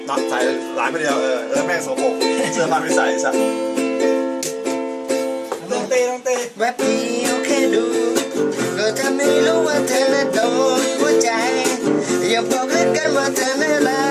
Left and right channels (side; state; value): both; identical; correlation 1.00